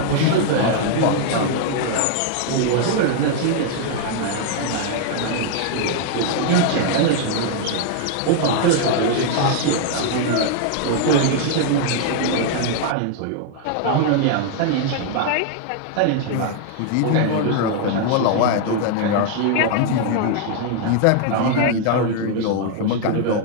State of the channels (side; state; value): both; different; correlation 0.00